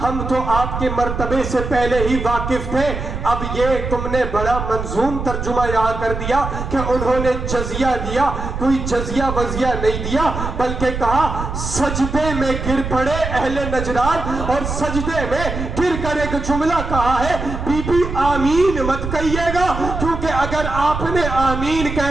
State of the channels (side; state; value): right; noise; rumble, 5 dB below the sound